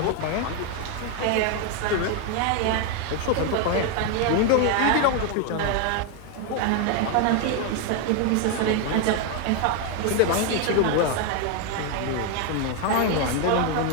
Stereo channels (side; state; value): both; different; correlation 0.01